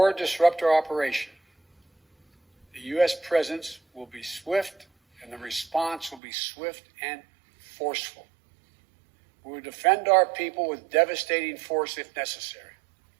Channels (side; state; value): left; drops out; at 6.2 s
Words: disrupt our operation, the U.S. presence will be swift and the response will be swift and forceful. We will defend our people with devastating force if necessary.